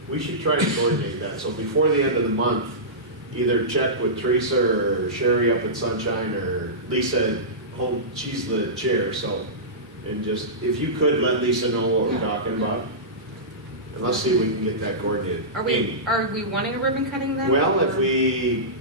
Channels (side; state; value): both; normal; correlation -0.18